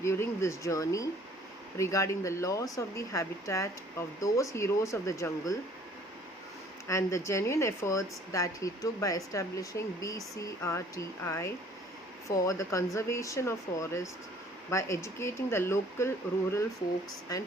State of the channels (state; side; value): normal; both; correlation 0.56